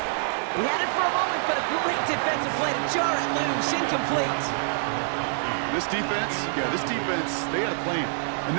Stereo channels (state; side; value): silent; left; 61 dB below the other